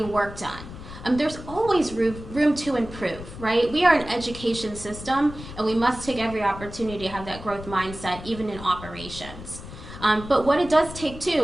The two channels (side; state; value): left; noise; rumble, 13 dB below the sound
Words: worked on. There's always room to improve, right? We are an education system, and we must take every opportunity to have that growth mindset, even in operations. But what it does take,